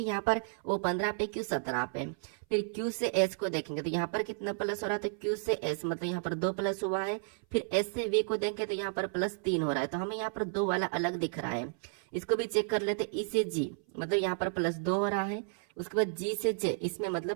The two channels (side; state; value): left; silent; 56 dB below the other